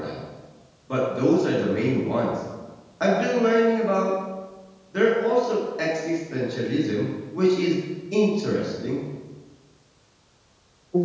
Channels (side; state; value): both; identical; correlation 1.00